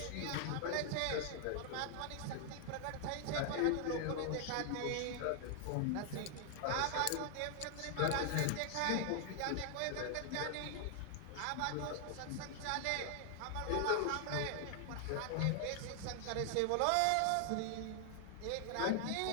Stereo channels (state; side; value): different; both; correlation 0.00